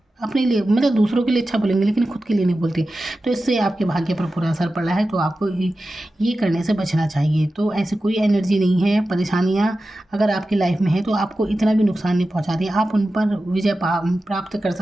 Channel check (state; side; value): normal; both; correlation 0.93